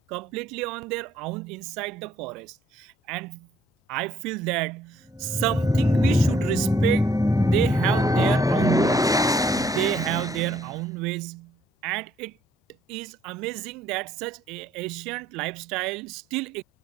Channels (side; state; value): both; normal; correlation 0.66